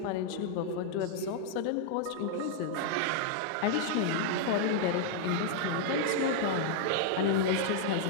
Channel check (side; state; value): both; different; correlation -0.01